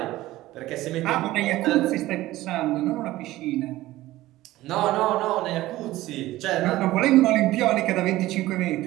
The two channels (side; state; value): left; quieter; 16.6 dB